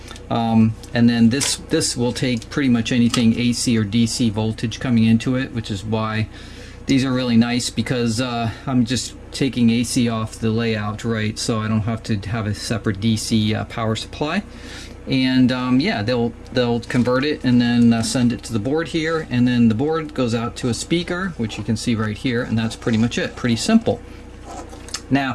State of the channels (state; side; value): identical; both; correlation 1.00